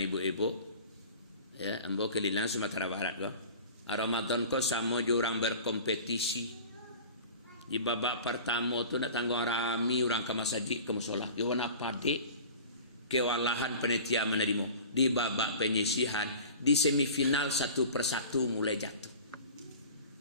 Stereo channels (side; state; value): both; inverted; correlation -0.40